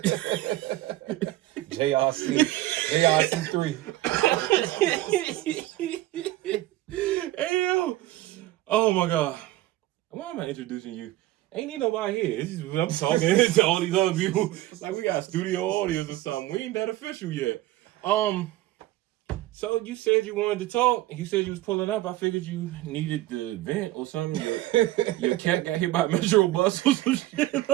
JRC3. Hey, oh my God. Why am I introducing you? Ain't need nobody here. I'm talking to all these other people. Like we got studio audience or something. We ain't that official yet. So you said you wanted to talk. You said you was pulling up. I figured you needed the vent or something. Your cat got hit by a metro bus or some shit.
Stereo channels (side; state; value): left; quieter; 16.3 dB